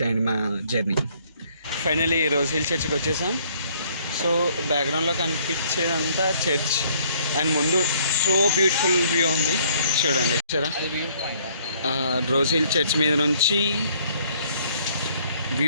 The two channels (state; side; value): inverted; both; correlation -0.62